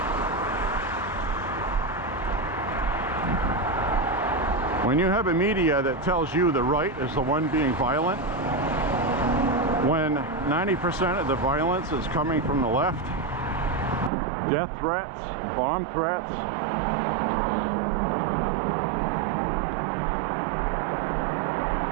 When you have a media that tells you the right is the one being violent, when 90% of the violence is coming from the left, death threats, bomb threats,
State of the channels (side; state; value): left; drops out; at 14.1 s